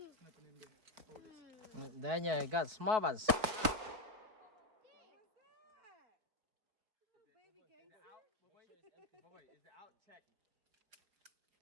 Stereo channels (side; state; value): left; late; 4.3 ms